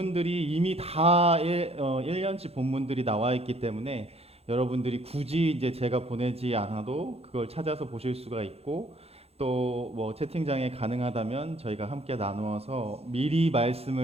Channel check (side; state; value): left; late; 0.29 ms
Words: 이미 다 1년치 본문들이 나와 있기 때문에 여러분들이 굳이 이제 제가 보내지 않아도 그걸 찾아서 보실 수가 있고 또 뭐 채팅장에 가능하다면 저희가 함께 나누어서 미리